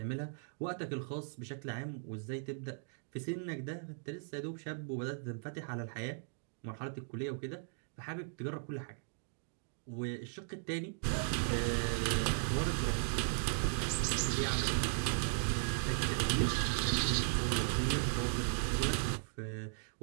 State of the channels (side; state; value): left; silent; digital silence